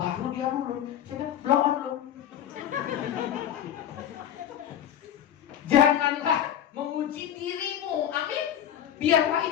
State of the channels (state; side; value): quieter; right; 10.3 dB